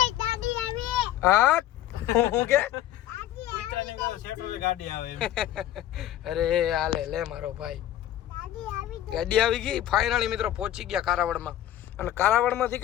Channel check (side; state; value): right; quieter; 12.7 dB